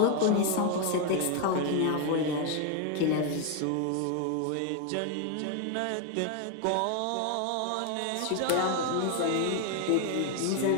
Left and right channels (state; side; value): different; both; correlation 0.01